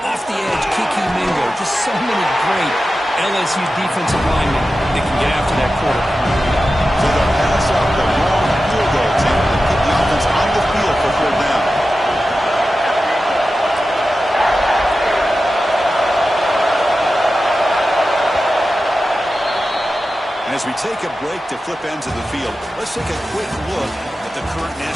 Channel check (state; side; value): normal; both; correlation 0.93